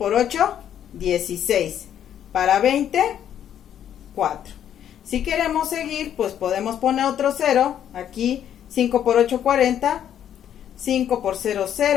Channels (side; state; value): right; quieter; 10.0 dB